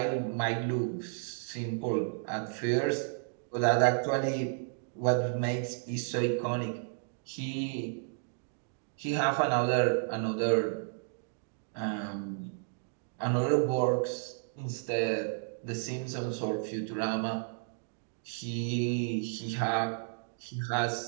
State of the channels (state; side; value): silent; left; digital silence